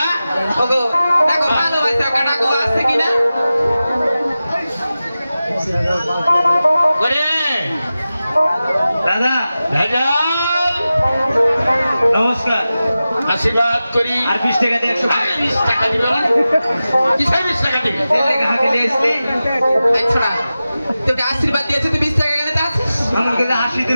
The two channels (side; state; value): both; inverted; correlation -0.94